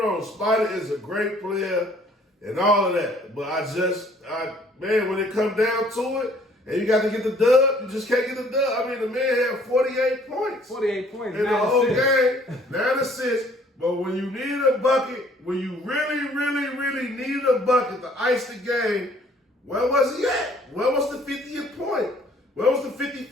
Spider is a great player and all of that, but when it comes down to it, and you got to get the dub, you just can't get the dub. I mean, the man had 48 points. 48 points. In the whole game, 9 assists. But when you need a bucket, when you really, really, really need a bucket to ice the game, where was he at? Where was the 50th point? Where was the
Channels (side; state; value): both; normal; correlation 0.58